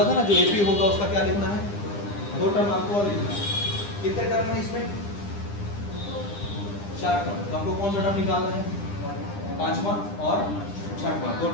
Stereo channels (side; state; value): right; late; 9.9 ms